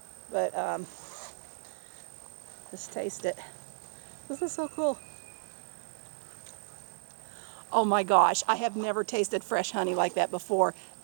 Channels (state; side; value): silent; left; digital silence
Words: but just taste it. This is so cool. Oh my gosh, I have never tasted fresh honey like that before.